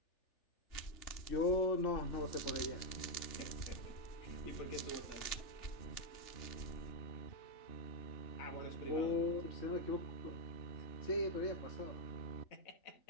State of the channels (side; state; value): right; late; 3.4 ms